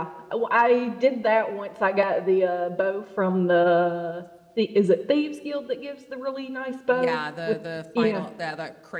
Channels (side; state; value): both; identical; correlation 1.00